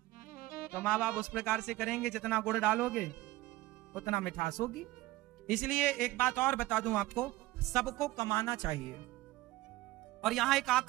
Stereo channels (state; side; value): quieter; left; 18.1 dB